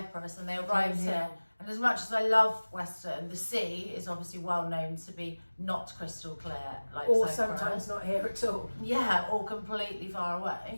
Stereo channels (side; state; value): both; inverted; correlation -1.00